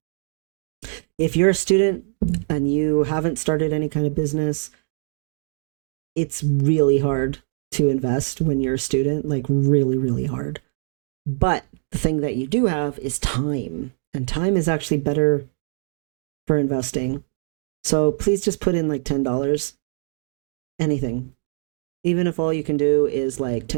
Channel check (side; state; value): left; silent; digital silence